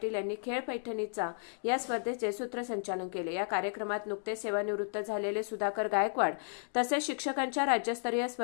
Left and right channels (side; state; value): right; silent; digital silence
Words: यांनी खेळ पैठणीचा या स्पर्धेचे सूत्रसंचालन केले। या कार्यक्रमात नुकतेच सेवानिवृत्त झालेले सुधाकर गायकवाड तसेच शिक्षकांच्या राज्यस्तरीय